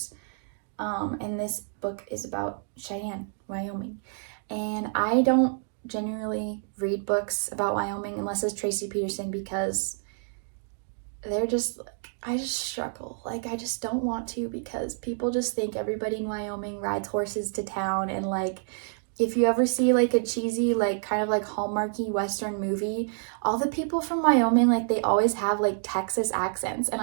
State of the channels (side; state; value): left; silent; digital silence